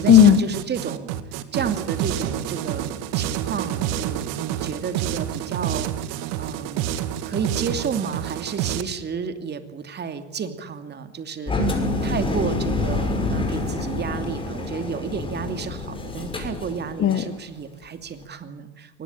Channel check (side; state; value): both; normal; correlation 0.24